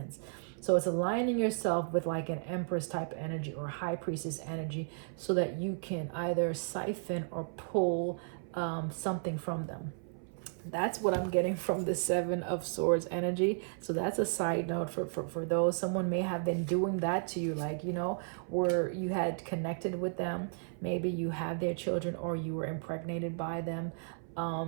So it's aligning yourself with like an Empress type energy or High Priestess energy so that you can either siphon or pull something from them. That's what I'm getting from the Seven of Swords energy. So that's a side note for those. Someone may have been doing that to you, like, you know, where you had connected with them. Maybe you had their children or you were impregnated by them.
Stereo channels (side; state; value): left; silent; 55 dB below the other